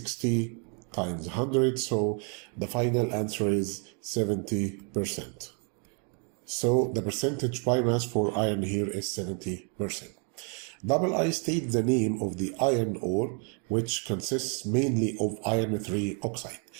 times 100, so the final answer is 70%. So the percentage by mass for iron here is 70%. Double I state the name of the iron ore, which consists mainly of iron 3 oxide.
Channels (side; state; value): left; quieter; 38.3 dB